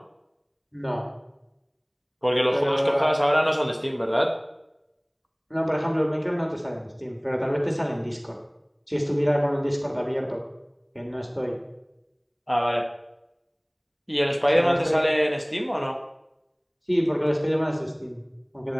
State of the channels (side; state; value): both; identical; correlation 1.00